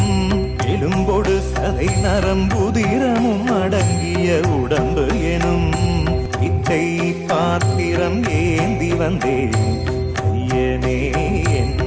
எலும்பொடு சதை நரம்புதிரமும் அடங்கிய உடம்பு எனும் பிச்சை பாத்திரம் ஏந்தி வந்தேன் ஐயனே என்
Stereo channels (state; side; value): identical; both; correlation 1.00